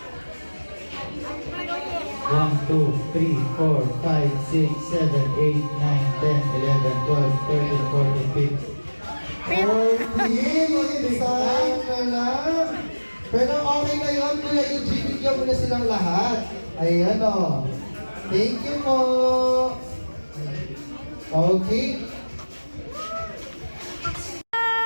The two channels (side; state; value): both; inverted; correlation -1.00